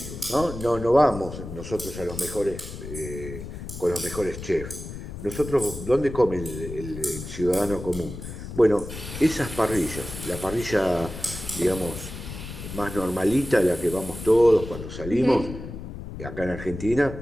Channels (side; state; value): left; noise; rumble, 10 dB below the sound